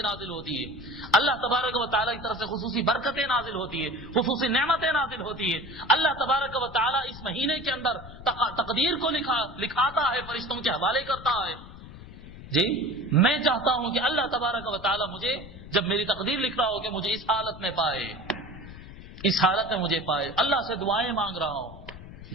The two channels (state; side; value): noise; left; rumble, 15 dB below the sound